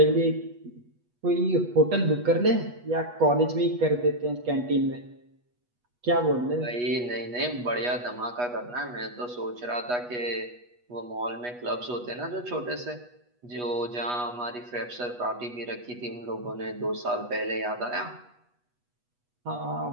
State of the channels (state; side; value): late; left; 8.2 ms